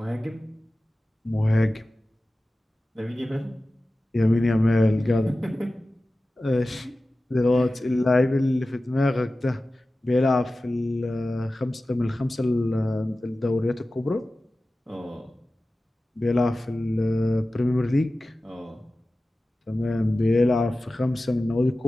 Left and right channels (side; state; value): both; normal; correlation 0.95